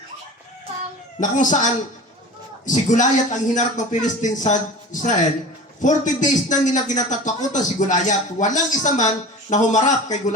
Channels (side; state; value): both; normal; correlation 0.36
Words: na kung saan si Goliath ang hinarap ng Philistine sa Israel, 40 days na nila kinatatakutan si Goliath. Walang isa man na humarap kay